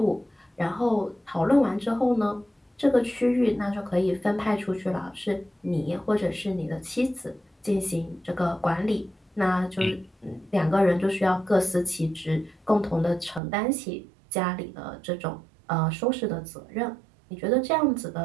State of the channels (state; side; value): drops out; left; at 13.4 s